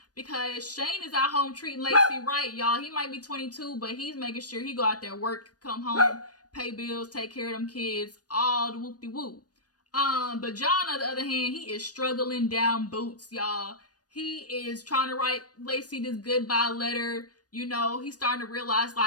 Because Shane is at home treating Lacey right, y'all. He might be 22, but he's making sure he go out there, work, come home, pay bills, take care of them kids, all the whoop-de-whoop. But John, on the other hand, he is struggling down boots, y'all. He is trying to write Lacey this goodbye letter. You know, he's starting to realize,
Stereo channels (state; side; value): late; right; 0.68 ms